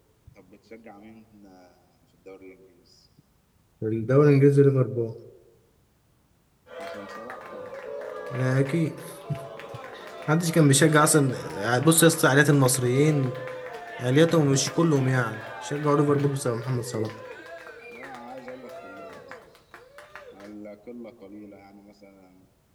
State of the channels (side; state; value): both; identical; correlation 1.00